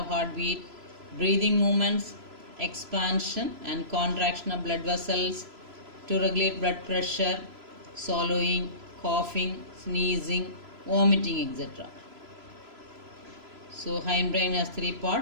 heartbeat, breathing movements, expansion and contraction of blood vessels, to regulate blood pressure, swallowing, coughing, sneezing, vomiting, etc. So hindbrain has three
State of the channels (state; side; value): late; left; 3.0 ms